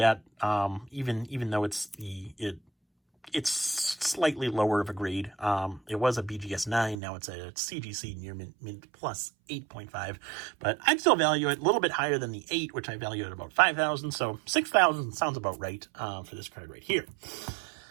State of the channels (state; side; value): drops out; left; at 7.0 s